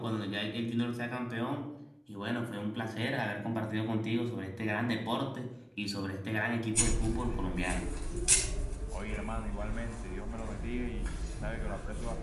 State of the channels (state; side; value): identical; both; correlation 1.00